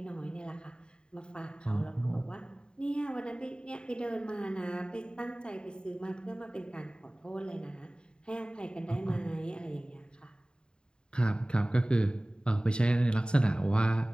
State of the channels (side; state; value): right; late; 0.049 ms